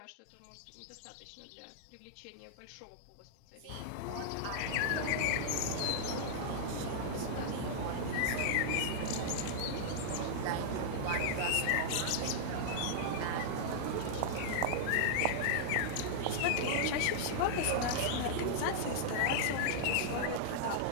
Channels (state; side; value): different; both; correlation -0.01